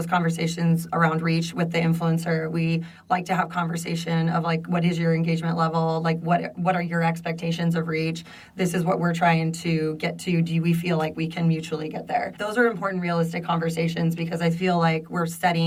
conversations around reach with the influencer. We like to have conversation of like, what is your engagement level? Like, what are your expectations of reach? This is what we're trying to get to. Do we feel like we can mutually get there? Those are important, realistic conversations because I feel like we're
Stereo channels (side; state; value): both; identical; correlation 1.00